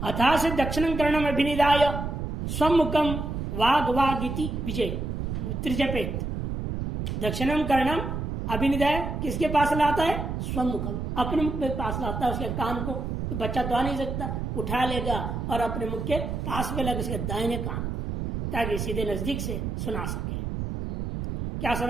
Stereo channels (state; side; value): noise; right; rumble, 3 dB below the sound